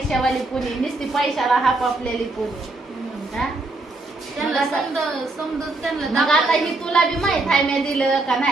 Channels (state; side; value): quieter; left; 3.1 dB